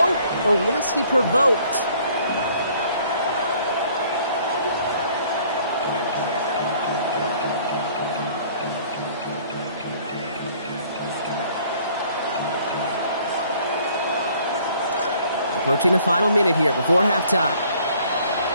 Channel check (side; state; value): both; inverted; correlation -0.58